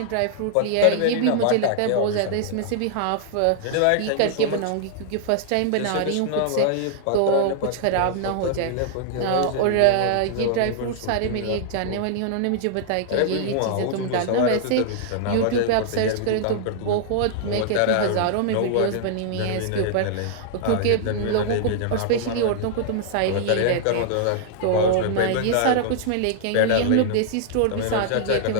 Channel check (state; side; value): different; both; correlation -0.01